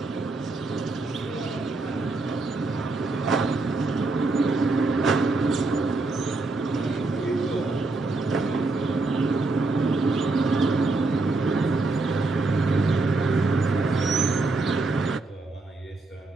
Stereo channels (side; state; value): left; quieter; 3.4 dB